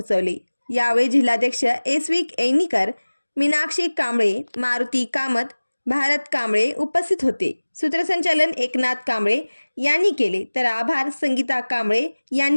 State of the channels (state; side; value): inverted; both; correlation -1.00